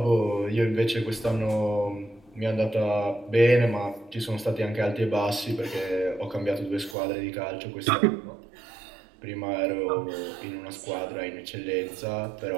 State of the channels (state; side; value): drops out; left; at 7.0 s